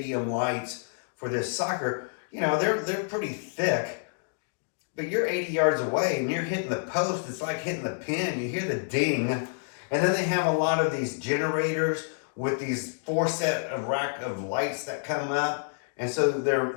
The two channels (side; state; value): right; silent; digital silence